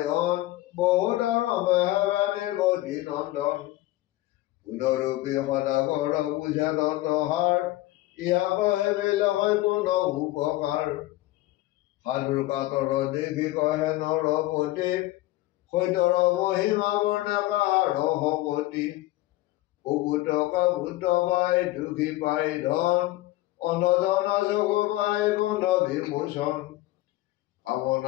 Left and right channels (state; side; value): quieter; right; 17.6 dB